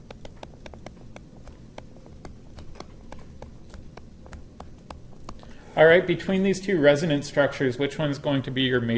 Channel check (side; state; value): both; identical; correlation 1.00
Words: All right, between these two resonance structures, which one's going to be your